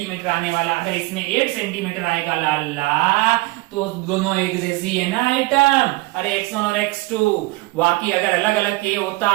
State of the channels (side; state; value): left; quieter; 22.3 dB